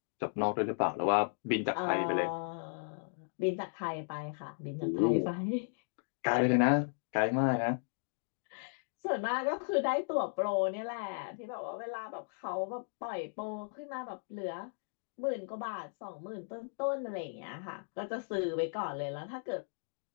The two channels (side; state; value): right; silent; digital silence